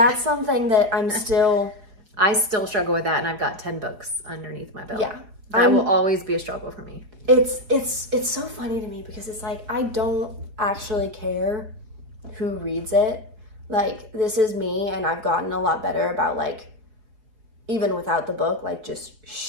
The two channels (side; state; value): left; late; 4.8 ms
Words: something that I'm still... I still struggle with that, and I've got 10 books underneath my belt. Yeah. That will always be a struggle for me. It's so funny to me because it's like, I don't actually care who reads it. Like, this is me, and I've gotten a lot better about, like, even without the book, like just